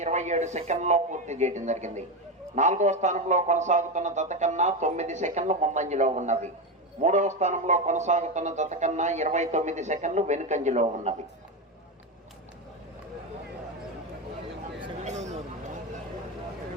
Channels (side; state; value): both; normal; correlation 0.14